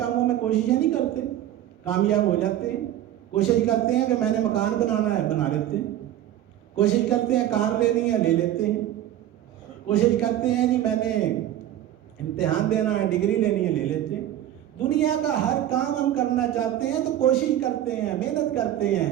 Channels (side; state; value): left; quieter; 12.2 dB